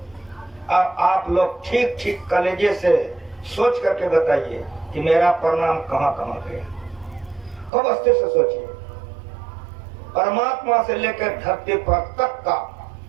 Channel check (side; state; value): left; drops out; at 7.7 s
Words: अब आप लोग ठीक ठीक कलेजे से सोच करके बताइए कि मेरा प्रणाम कहाँ कहाँ गया। खूब अस्थिर से सोचिए, परमात्मा से लेकर धरती पर तक का